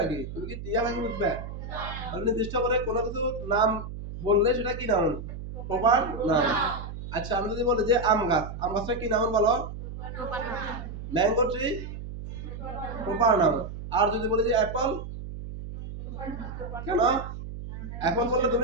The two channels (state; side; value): noise; right; hum, 9 dB below the sound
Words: তুমি কি টিয়া পাখি বুঝবে? তাহলে নির্দিষ্ট করে কোনো কিছু নাম বললে সেটা কি নাউন? Proper noun. আচ্ছা, আমি যদি বলি যে আম গাছ, আম গাছটা কি নাউন বলো? Mango tree, proper noun. আর যদি বলি যে অ্যাপল, কেন? অ্যাপল বললে